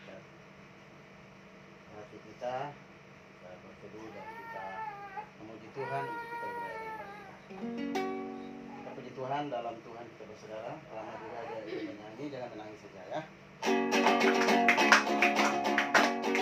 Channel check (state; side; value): identical; both; correlation 1.00